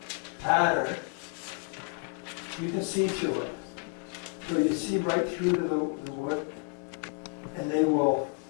pattern, you can see through it. So you see right through to the wood, and they will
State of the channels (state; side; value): quieter; right; 38.8 dB